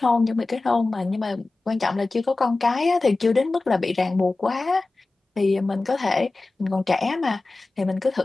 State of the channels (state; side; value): quieter; right; 3.3 dB